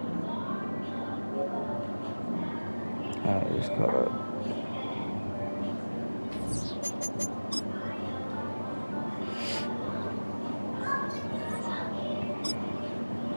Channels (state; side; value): inverted; both; correlation -1.00